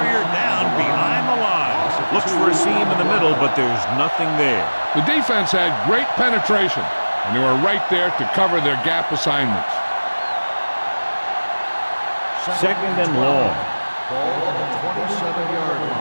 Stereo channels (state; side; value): inverted; both; correlation -1.00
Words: down behind the line. Looks for a seam in the middle, but there's nothing there. The defense had great penetration, and they were right there to cover their gap assignments. Second and long. Ball on the 27-yard